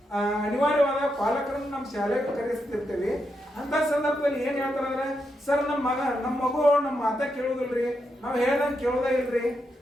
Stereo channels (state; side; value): normal; both; correlation 0.83